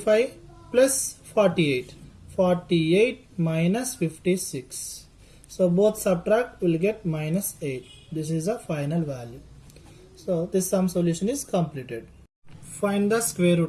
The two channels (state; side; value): identical; both; correlation 1.00